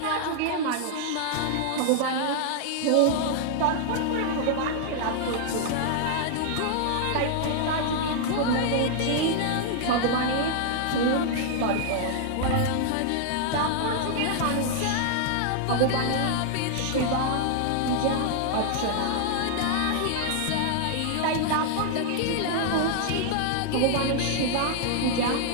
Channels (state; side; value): different; both; correlation -0.01